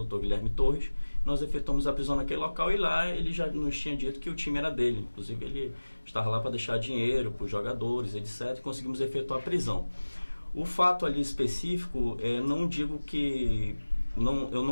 Dr. Guilherme Torres. Nós efetuamos a prisão naquele local e lá ele já nos tinha dito que o time era dele. Inclusive, ele estava lá para deixar dinheiro para os jogadores, etc. E conseguimos efetuar a prisão. O fato ali específico, não digo que... eu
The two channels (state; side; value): inverted; both; correlation -1.00